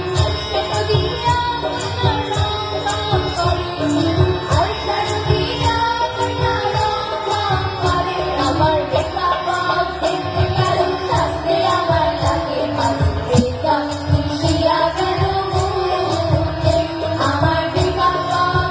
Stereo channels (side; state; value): both; identical; correlation 1.00